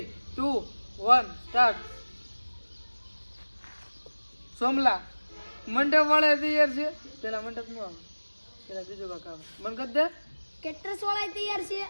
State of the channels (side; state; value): both; inverted; correlation -1.00